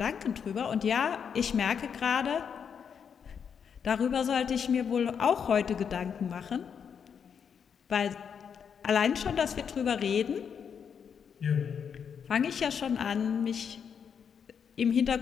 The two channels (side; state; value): right; quieter; 7.1 dB